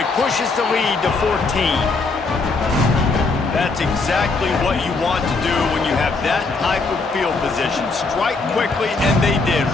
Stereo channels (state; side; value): quieter; right; 3.9 dB